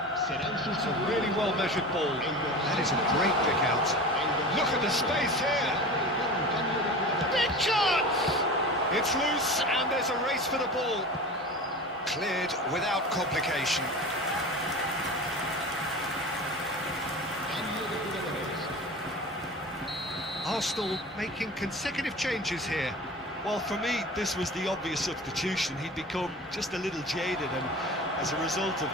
Serán It's a sustituidos. really well-measured ball. That is a great pick out. Look at the space here. Big chance! It's loose, and there's a race for the ball. Cleared without complication. Arsenal making consecutive changes here. Well, for me, this was the obvious substitution. He'd become just a little jaded, and as a result of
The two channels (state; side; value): normal; both; correlation 0.34